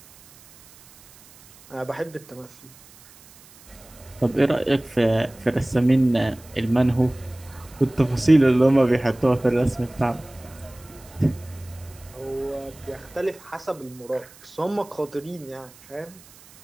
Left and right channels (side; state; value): right; noise; hiss, 24 dB below the sound